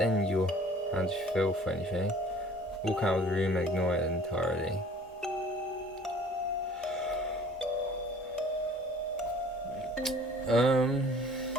your hand to feel for anything. Walk out of the room and ignore it entirely.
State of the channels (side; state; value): both; normal; correlation 0.51